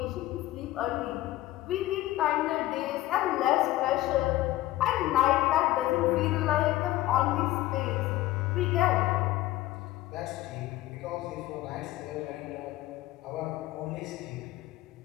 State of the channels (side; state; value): right; quieter; 16.2 dB